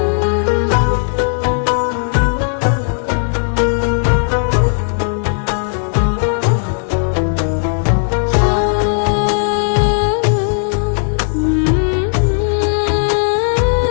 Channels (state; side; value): silent; right; digital silence